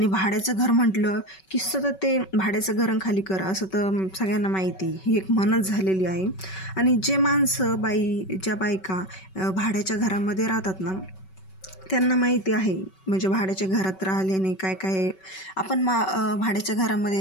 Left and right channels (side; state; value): right; late; 5.3 ms